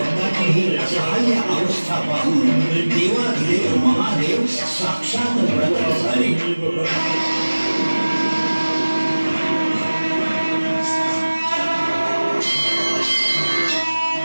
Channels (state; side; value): inverted; both; correlation -1.00